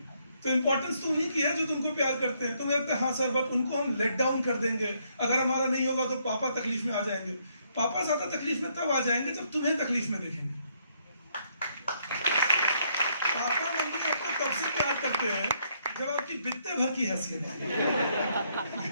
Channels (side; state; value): both; inverted; correlation -0.72